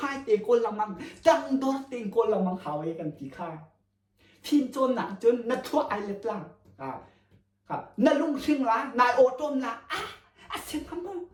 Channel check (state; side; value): identical; both; correlation 1.00